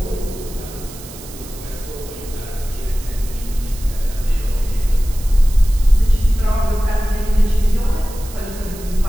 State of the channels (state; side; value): noise; right; hiss, 16 dB below the sound